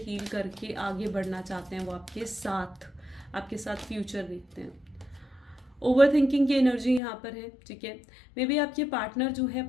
करके आगे बढ़ना चाहते हैं वो आपके साथ फ्यूचर देखते हैं। ओवर थिंकिंग की एनर्जी यहाँ पर है, ठीक है। मे बी आपके पार्टनर जो है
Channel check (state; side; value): drops out; right; at 7.0 s